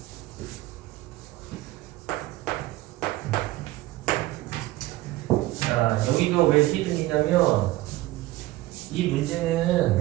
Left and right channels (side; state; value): left; quieter; 17.6 dB